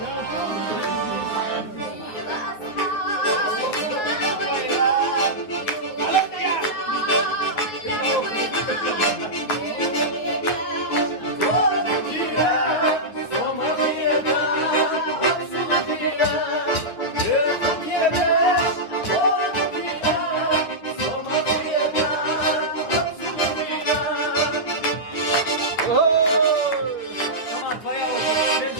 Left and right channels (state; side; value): late; right; 9.4 ms